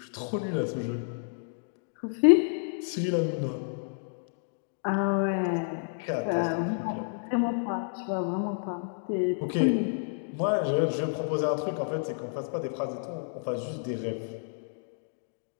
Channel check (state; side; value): silent; right; digital silence